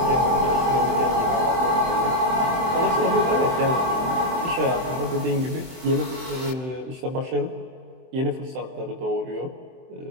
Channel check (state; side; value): late; left; 23 ms